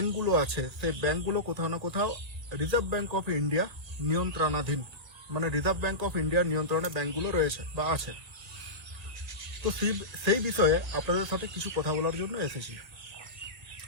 আছে সেই ব্যাংকগুলো কোথাও না কোথাও রিজার্ভ ব্যাংক অফ ইন্ডিয়া নিয়ন্ত্রণাধীন, মানে রিজার্ভ ব্যাংক অফ ইন্ডিয়ার নিয়ন্ত্রণে ব্যাংকগুলো রয়েছে বা আছে। তো সেই বিষয়ে আপনাদের সাথে কিছু কথা বলার জন্য এসেছি।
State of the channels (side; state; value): left; late; 1.8 ms